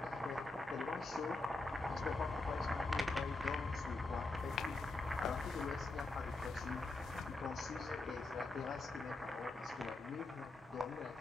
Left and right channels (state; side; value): quieter; right; 3.0 dB